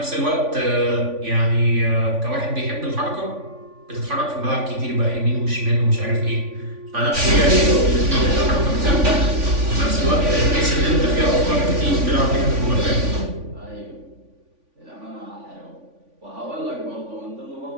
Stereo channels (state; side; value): late; left; 3.5 ms